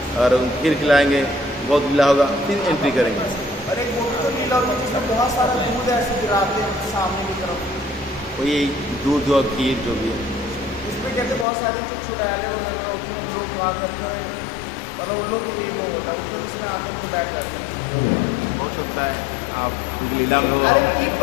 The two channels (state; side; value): drops out; right; at 11.5 s